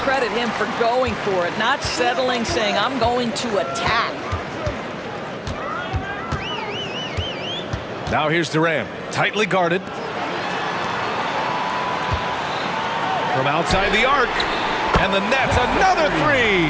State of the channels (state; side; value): identical; both; correlation 1.00